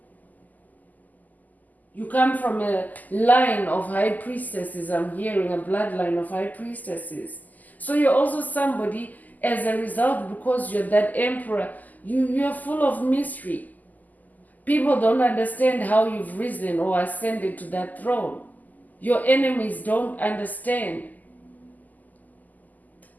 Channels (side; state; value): right; late; 0.082 ms